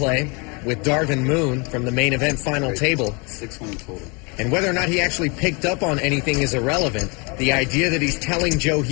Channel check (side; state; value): right; quieter; 30.9 dB